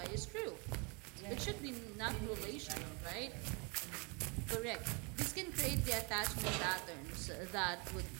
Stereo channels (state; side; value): quieter; left; 32.1 dB